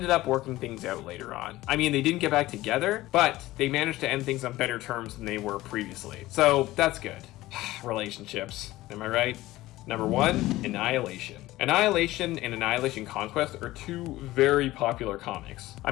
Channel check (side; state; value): right; quieter; 17.2 dB